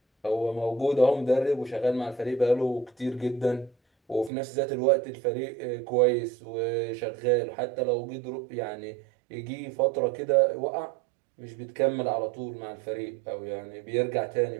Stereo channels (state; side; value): drops out; left; at 4.3 s